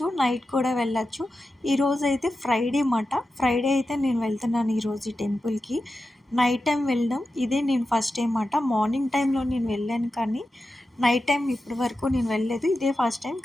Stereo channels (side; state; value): both; normal; correlation 0.91